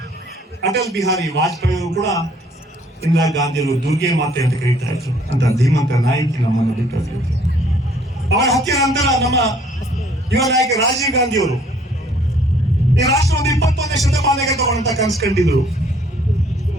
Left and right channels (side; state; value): both; normal; correlation 0.61